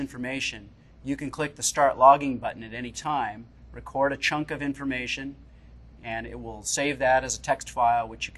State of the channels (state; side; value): identical; both; correlation 1.00